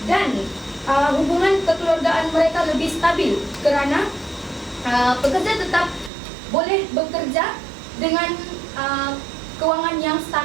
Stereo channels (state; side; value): drops out; left; at 6.1 s